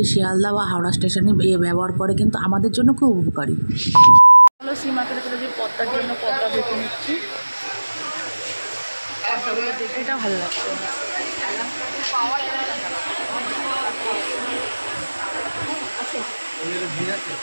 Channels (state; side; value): inverted; both; correlation -1.00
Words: শিয়ালদা বা হাওড়া স্টেশনে ব্যবহার করে, কিন্তু আমাদের জন্য খুব উপকারী। হলো সি মার্কেটে চলে যে পদ্মার জন্য পদ্মা দেখে নিচ্ছি, পদ্মাগুলো দেখে এটা ভালো লাগছে।